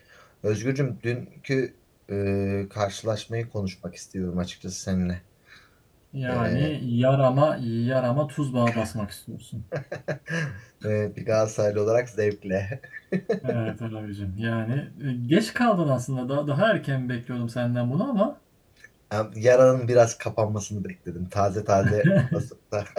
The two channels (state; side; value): identical; both; correlation 1.00